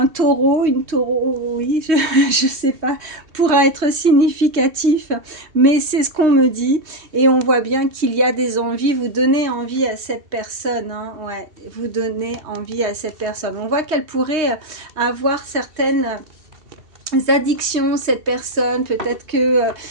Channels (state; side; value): late; left; 2.7 ms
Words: taureau, une taureau, oui, je sais pas, pourra être significatif, mais c'est ce qu'on me dit, et on voit bien qu'il y a des envies, vous donnez envie à cette personne, hein, ouais, vous donnez envie à cette personne. On voit qu'elle pourrait avoir certaines addictions, cette personne, peut-être que